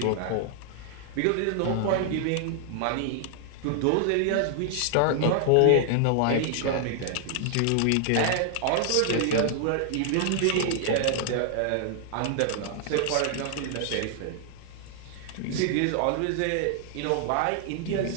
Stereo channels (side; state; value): both; different; correlation 0.00